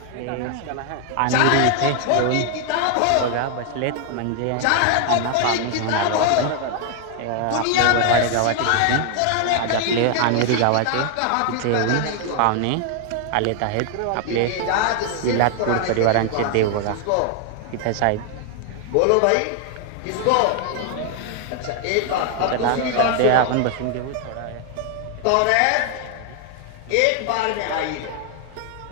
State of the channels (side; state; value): both; different; correlation 0.00